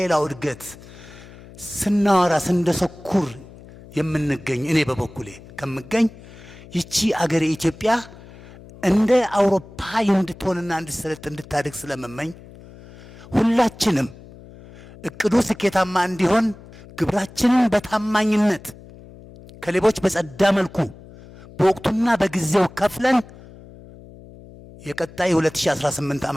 ሌላው እድገት ስናወራ ስንደሰኩር የምንገኝ እኔ በበኩሌ ከምገኝ ይቺ አገር ኢትዮጵያ እንደ አውሮፓ እንድትሆንና እንድትሰለጥ እንድታድግ ስለመመኝ ሁላችንም እቅዱ ስኬታማ እንዲሆን ግብራችንን በታማኝነት ከሌቦች በጸዳ መልኩ በወቅቱና በጊዜው ከፍለን የቀጣይ 2018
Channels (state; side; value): noise; left; hum, 20 dB below the sound